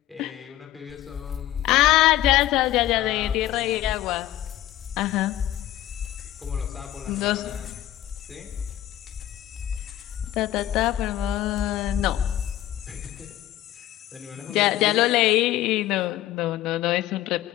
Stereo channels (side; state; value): right; quieter; 13.7 dB